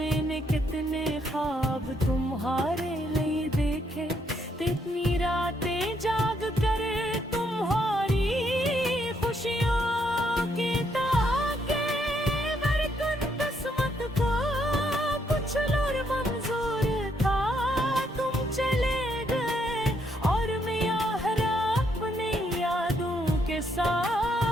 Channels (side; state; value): both; normal; correlation 0.74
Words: कितने ख्वाब तुम्हारे लिए देखे, कितनी रातें जाग कर तुम्हारी खुशियों की ताके बरकत किस्मत को कुछ और मंजूर था। तुम चले गए और मैं यहाँ अपनी यादों के